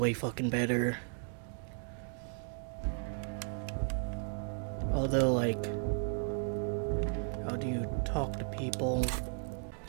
fucking better. Although, like, how do you talk to people?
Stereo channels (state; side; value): silent; left; 54 dB below the other